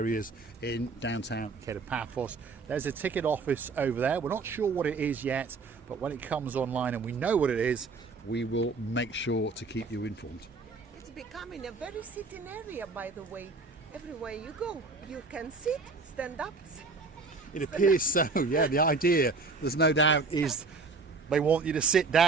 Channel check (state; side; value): quieter; left; 4.1 dB